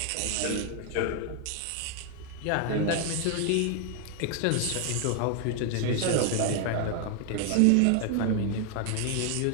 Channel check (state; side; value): different; both; correlation 0.00